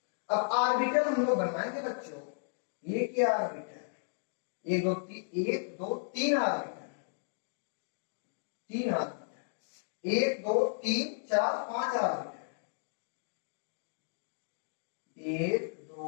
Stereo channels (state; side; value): silent; right; digital silence